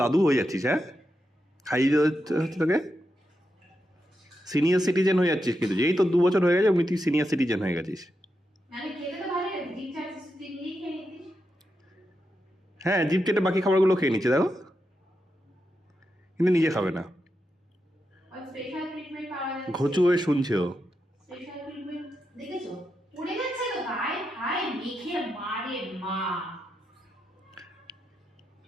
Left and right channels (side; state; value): both; normal; correlation 0.86